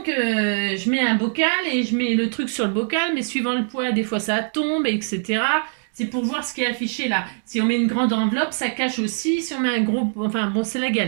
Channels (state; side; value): silent; left; 64 dB below the other